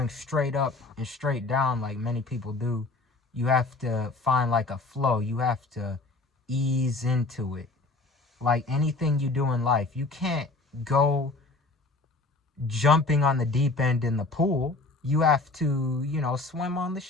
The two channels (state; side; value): quieter; right; 3.4 dB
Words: straight up and straight down like many people do, you have to find like a flow. You have to ease into it. Like anything you do in life, you can't go jumping on the deep end in the pool. You have to, swim on the